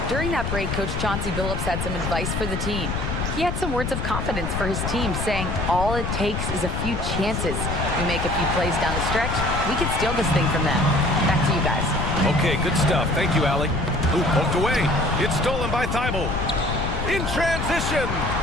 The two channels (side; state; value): left; noise; rumble, 3 dB below the sound